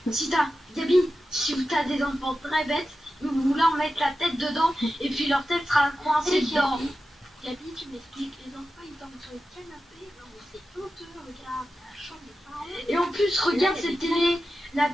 Gabi, si t'as des enfants très bêtes, vous leur mettre la tête dedans et puis leur tête sera coincée dedans. Gabi, tu m'expliques, les enfants ils dorment sur le canapé. Non, mais c'est honteux, regarde, la chambre de parents. Et en plus, regarde cette télé. La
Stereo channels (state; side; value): normal; both; correlation 0.92